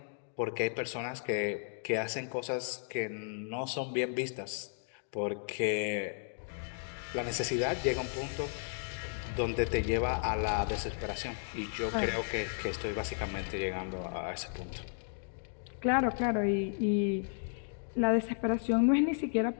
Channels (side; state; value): right; silent; digital silence